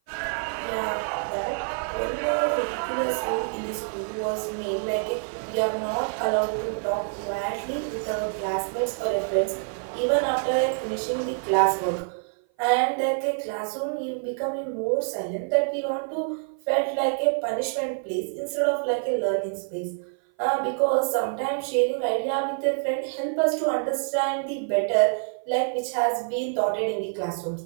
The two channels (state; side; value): silent; left; 56 dB below the other